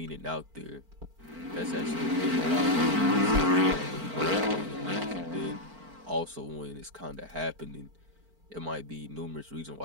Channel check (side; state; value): left; late; 4.5 ms